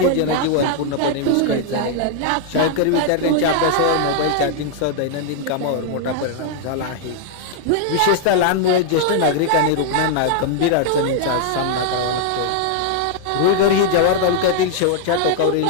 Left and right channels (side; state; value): both; different; correlation -0.01